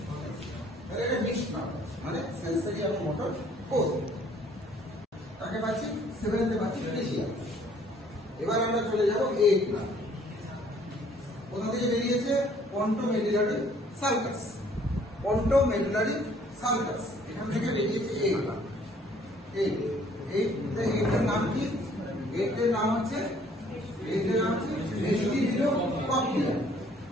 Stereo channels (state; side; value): normal; both; correlation 0.60